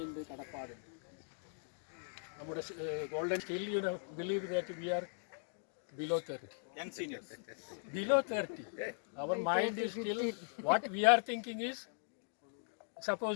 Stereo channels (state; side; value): silent; right; digital silence